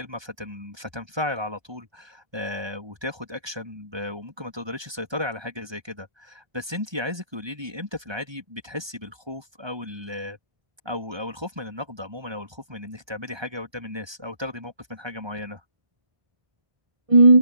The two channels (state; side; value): late; left; 1.2 ms